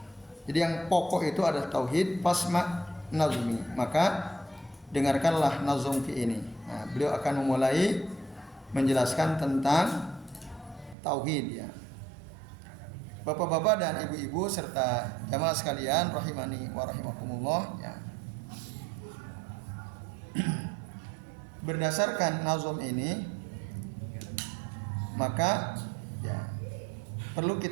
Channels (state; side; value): drops out; left; at 11.0 s